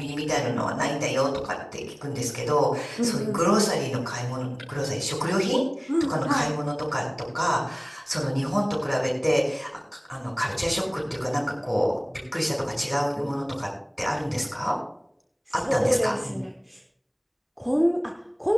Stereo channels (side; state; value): both; identical; correlation 1.00